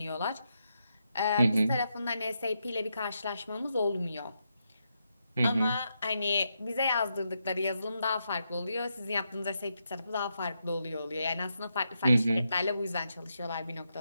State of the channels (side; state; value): both; inverted; correlation -0.83